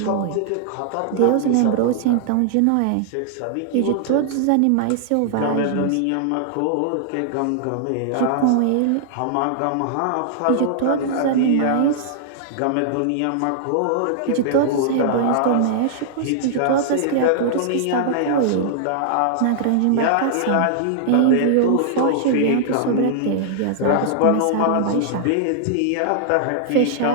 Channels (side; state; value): both; different; correlation -0.01